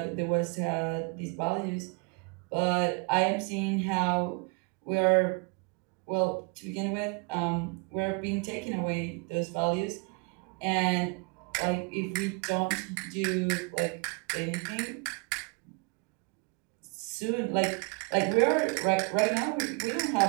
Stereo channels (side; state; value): left; quieter; 31.6 dB